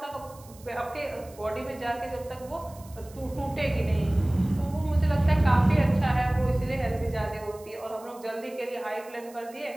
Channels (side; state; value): right; noise; hiss, 23 dB below the sound